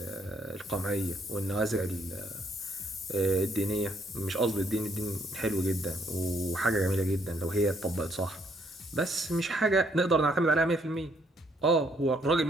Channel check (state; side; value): normal; both; correlation 0.69